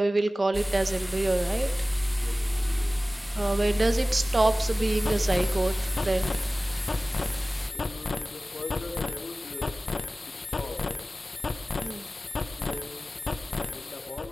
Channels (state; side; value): normal; both; correlation 0.97